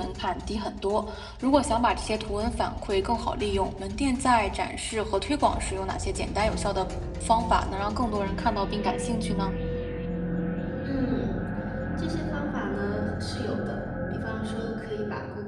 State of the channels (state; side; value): identical; both; correlation 1.00